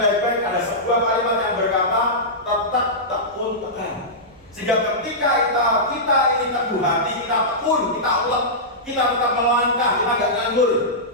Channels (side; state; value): right; noise; rumble, 29 dB below the sound